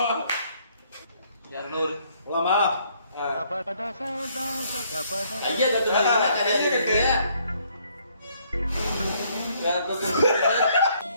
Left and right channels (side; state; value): both; inverted; correlation -0.66